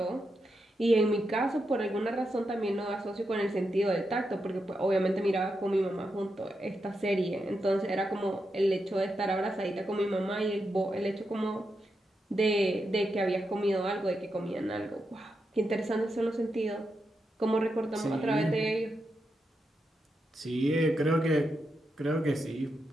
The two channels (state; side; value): normal; both; correlation 0.86